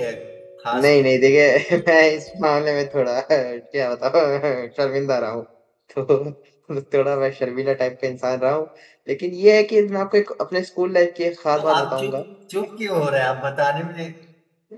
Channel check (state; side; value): identical; both; correlation 1.00